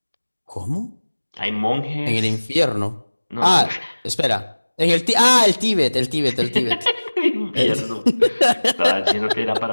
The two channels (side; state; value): both; inverted; correlation -1.00